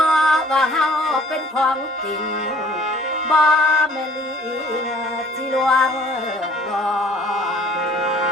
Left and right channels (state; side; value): normal; both; correlation 0.54